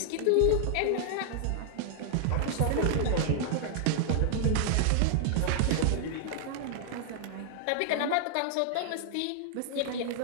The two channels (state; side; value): different; both; correlation -0.01